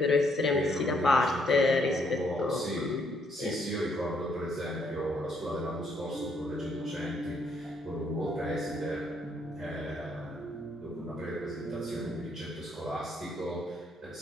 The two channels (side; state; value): both; normal; correlation 0.71